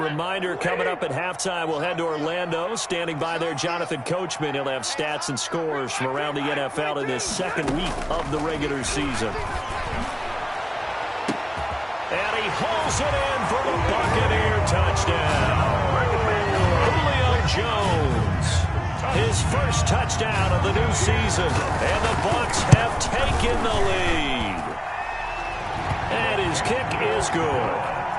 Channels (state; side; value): identical; both; correlation 1.00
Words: coming up at halftime, we'll head to Orlando. Standing by there, Jonathan Coachman. He'll have stats and scores from around the NFL in this 2nd week of the regular season. And he hauls it in for the Buccaneer touchdown. Julio Jones, his first touchdown of the new season. And the Bucs have taken the lead. And his kick is good.